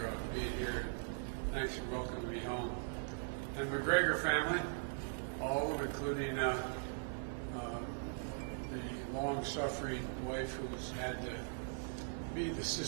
being here. Thanks for welcoming me home. And the McGregor family, all of them, including the long-suffering wife who's had to be the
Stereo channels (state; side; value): silent; left; digital silence